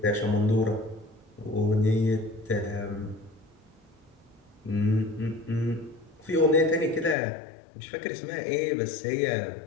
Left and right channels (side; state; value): right; drops out; at 7.2 s